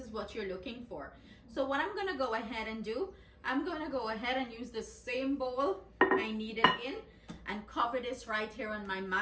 what you're looking for. So what I'm gonna go ahead and do, I'm gonna go ahead and use the same bowl I kneaded in and cover this right here on my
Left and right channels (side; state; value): both; identical; correlation 1.00